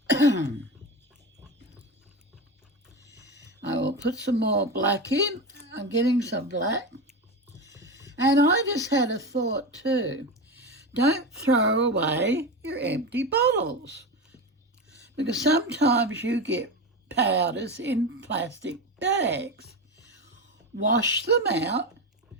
I will put some more black in. I'm getting some black. And I just had a thought too. Don't throw away your empty bottles, because sometimes you get powders in plastic bags. Wash them out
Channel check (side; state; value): both; normal; correlation 0.21